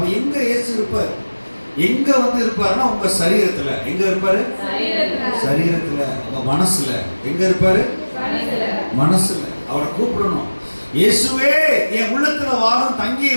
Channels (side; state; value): both; inverted; correlation -1.00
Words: எங்க இயேசு இருப்பார்? எங்க இருப்பாருன்னா உங்க சரீரத்துல. எங்க இருப்பாரு? சரீரத்துல. உங்க மனசுல. எங்க இருப்பாரு? மனசுல. அவரை கூப்பிடணும். இயேசுவே, என் உள்ளத்துல வாரம்